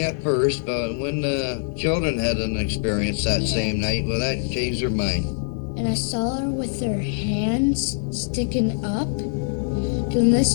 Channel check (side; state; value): right; silent; 63 dB below the other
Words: at first, but when the children had an experience that same night, well, that changed her mind. And I saw her with her hands sticking up, doing this.